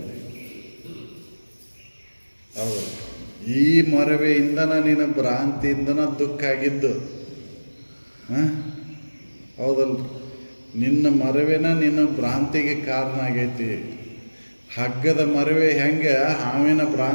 ಹೌದಲ್ಲ ಈ ಮರವೆಯಿಂದನ ನಿನ್ನ ಭ್ರಾಂತಿಯಿಂದನ ದುಃಖ ಆಗಿದ್ದು ಹೌದಲ್ಲ ನಿನ್ನ ಮರವೆನ ನಿನ್ನ ಭ್ರಾಂತಿಗೆ ಕಾರಣ ಆಗೈತಿ ಹಗ್ಗದ ಮರವೆ ಹೆಂಗೆ ಹಾವಿನ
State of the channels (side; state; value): both; inverted; correlation -1.00